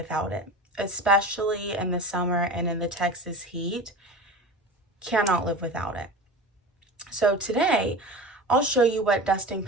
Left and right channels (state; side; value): normal; both; correlation 0.32